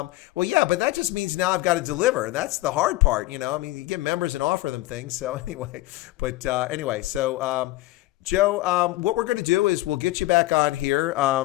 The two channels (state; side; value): quieter; right; 18.0 dB